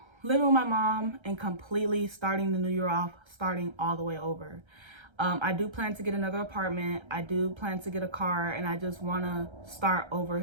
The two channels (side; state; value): left; late; 1.3 ms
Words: living with my mom and completely starting the new year off, starting all the way over. I do plan to get another apartment. I do plan to get a car, and I just want to start over,